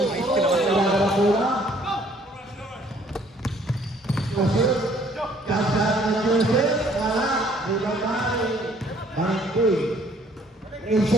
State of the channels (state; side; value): normal; both; correlation 0.60